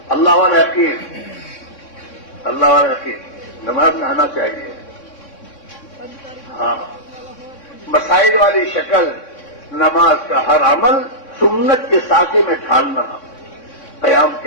اللہ والا یقین، اللہ والا یقین، نماز میں آنا چاہیے. ہاں، مسائل والی شکل، نماز کا ہر عمل سنت کے ساقے میں ڈھالنا. قیام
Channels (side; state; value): right; late; 3.6 ms